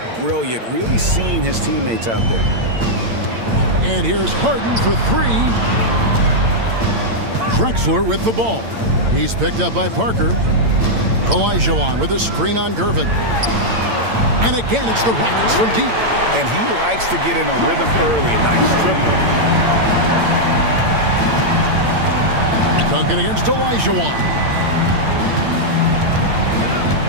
brilliant. Really seeing his teammates out there. And here's Harden for 3. Drexler with the ball. He's picked up by Parker. Olajuwon with a screen on Gervin. And again, it's the Rockets from deep. And he likes to get in a rhythm early. Nice triple. Duncan against Olajuwon.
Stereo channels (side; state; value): left; late; 8.8 ms